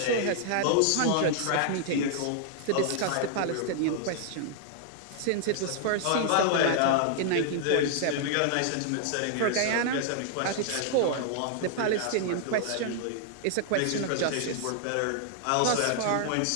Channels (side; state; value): both; different; correlation -0.01